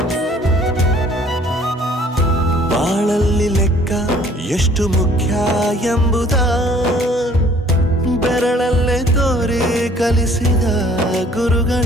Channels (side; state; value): both; normal; correlation 0.56